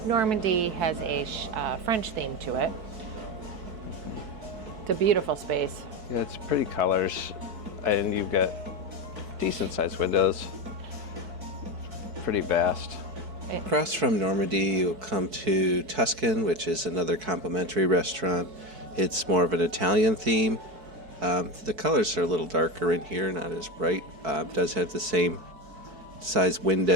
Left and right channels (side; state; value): left; late; 4.6 ms